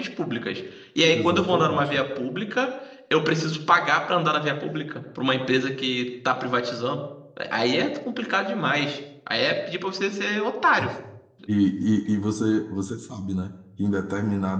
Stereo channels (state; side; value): identical; both; correlation 1.00